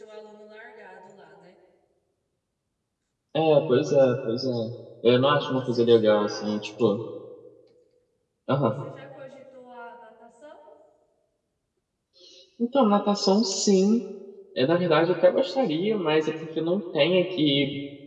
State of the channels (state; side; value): identical; both; correlation 1.00